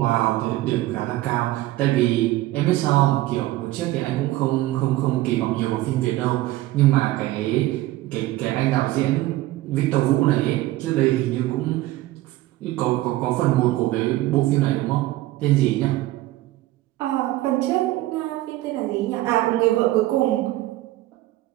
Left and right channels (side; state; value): left; quieter; 16.8 dB